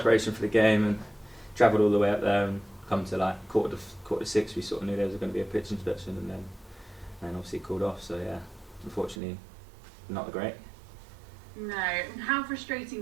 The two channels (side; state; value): left; drops out; at 9.2 s